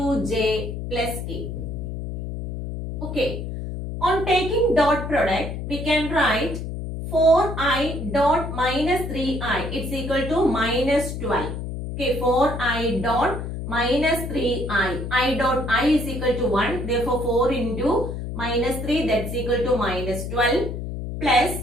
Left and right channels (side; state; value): left; noise; hum, 6 dB below the sound